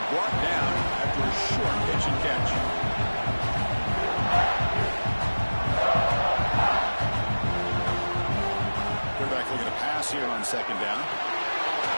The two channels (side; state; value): both; inverted; correlation -1.00